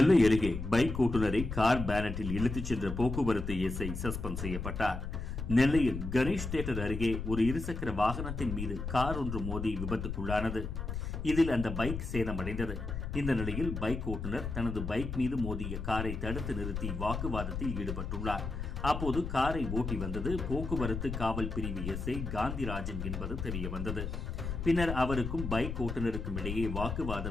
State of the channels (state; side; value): noise; left; rumble, 5 dB below the sound